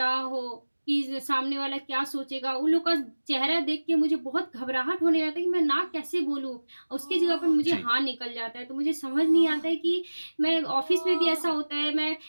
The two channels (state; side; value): inverted; both; correlation -1.00